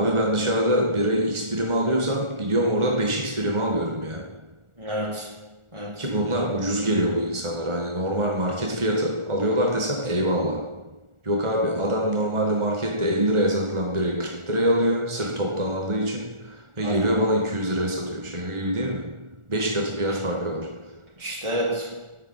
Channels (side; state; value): left; late; 1.4 ms